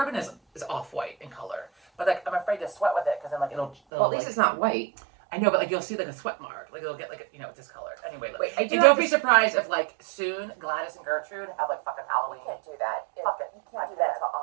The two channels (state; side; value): drops out; left; at 3.8 s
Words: is off white in color, but like I'm afraid to sweat with it because then like it'll Well, at least like, it's not white. I know, but like you'll see like a sweat mark. Like it'll get like discolored. Anyway, Wait, I do and have don't be surprised if like soon Gladys and Gertrude have like fucking Halloween. You can't do that. Fuck it. You can't do that until